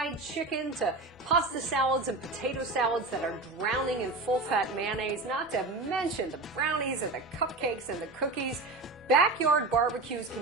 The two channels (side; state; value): left; quieter; 3.2 dB